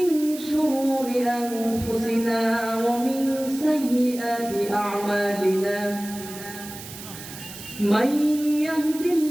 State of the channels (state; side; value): noise; right; hiss, 13 dB below the sound